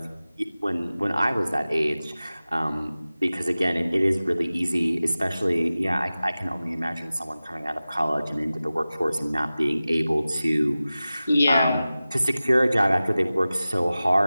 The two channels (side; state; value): both; inverted; correlation -0.96